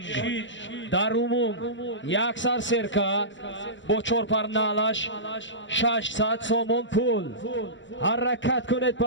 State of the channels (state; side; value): late; right; 0.54 ms